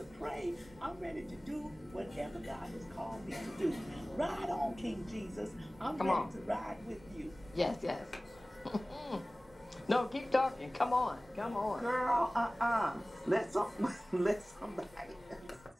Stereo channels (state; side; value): normal; both; correlation 0.98